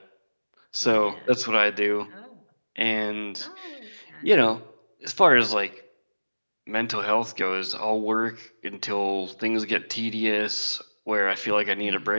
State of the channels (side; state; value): both; inverted; correlation -1.00